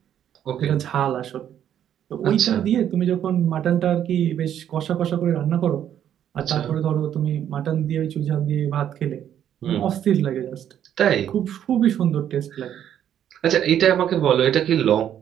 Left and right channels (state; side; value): quieter; left; 10.1 dB